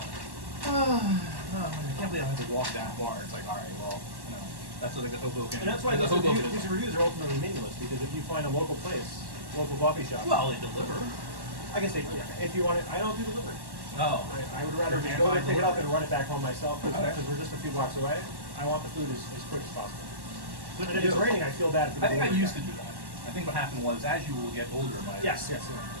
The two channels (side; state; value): left; late; 1.1 ms